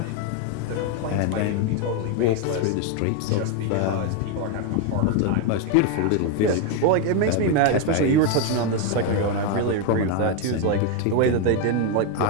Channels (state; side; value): different; both; correlation 0.02